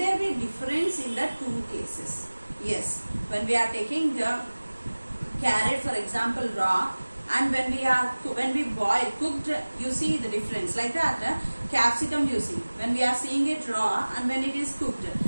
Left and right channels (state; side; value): inverted; both; correlation -1.00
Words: be difference in the two cases? Yes. When we are taking the carrot, for example, raw, and when we boil, cooked, you see the difference. Like that, capsicum you see. When we are seeing it raw and when it is cooked,